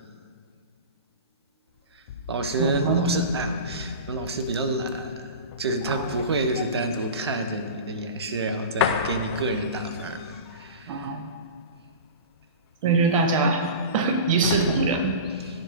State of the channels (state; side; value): inverted; both; correlation -0.31